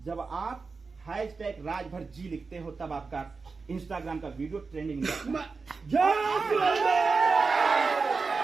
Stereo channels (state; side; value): quieter; left; 4.5 dB